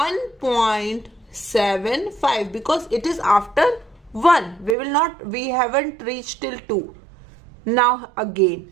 because it is after 1. We haven't reached till 2. Now again.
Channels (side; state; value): left; drops out; at 4.8 s